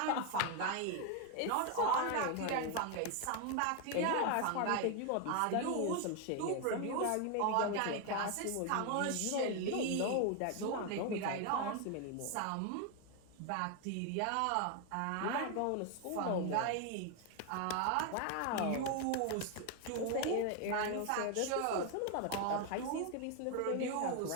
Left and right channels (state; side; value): different; both; correlation 0.01